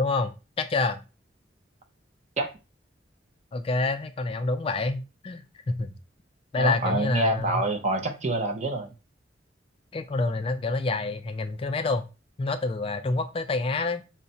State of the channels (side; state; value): both; normal; correlation 0.25